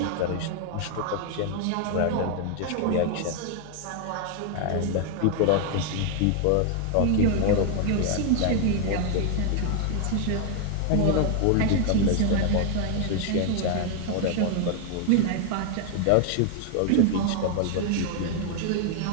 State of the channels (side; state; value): both; different; correlation 0.00